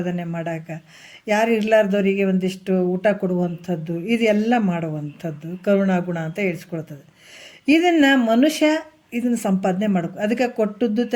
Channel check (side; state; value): both; identical; correlation 1.00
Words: ಮಾಡೋಕೆ, ಯಾರು ಇರಲಾರ್ದವರಿಗೆ ಒಂದಿಷ್ಟು ಊಟ ಕೊಡುವಂಥದ್ದು, ಇದೆಲ್ಲ ಮಾಡುವಂಥದ್ದು ಕರುಣಾಗುಣ ಅಂತ ಹೇಳ್ಸ್ಕೊಳ್ತದೆ. ಇದನ್ನು ಮನುಷ್ಯ ಇದನ್ನು ಸಂಪಾದನೆ ಮಾಡಬೇಕು. ಅದಕ್ಕೆ ಕೊಟ್ಟದ್ದು